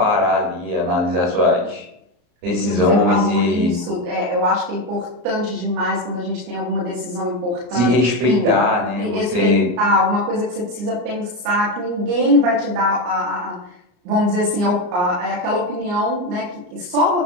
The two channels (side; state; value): left; late; 34 ms